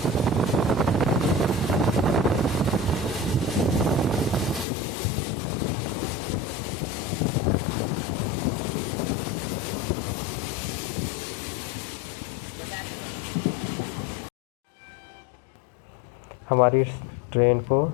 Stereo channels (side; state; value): right; drops out; at 4.7 s